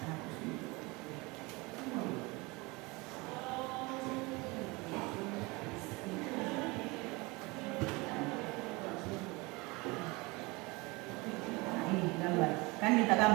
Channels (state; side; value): quieter; left; 24.8 dB